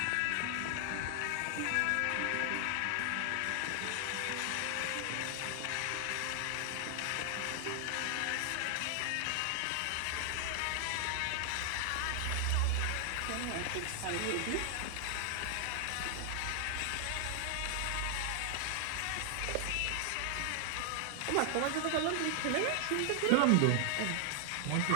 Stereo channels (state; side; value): different; both; correlation 0.00